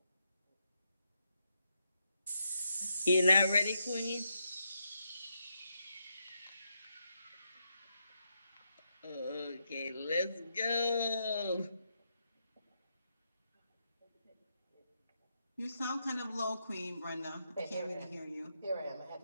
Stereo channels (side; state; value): both; inverted; correlation -0.82